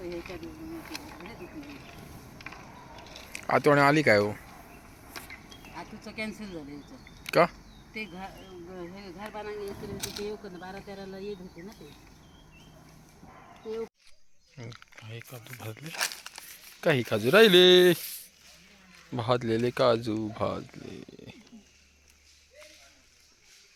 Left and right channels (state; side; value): identical; both; correlation 1.00